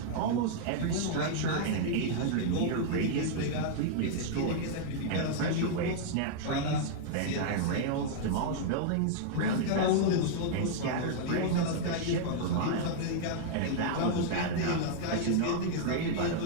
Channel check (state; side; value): different; both; correlation -0.01